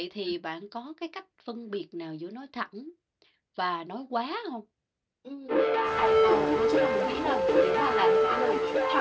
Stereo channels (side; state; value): both; identical; correlation 1.00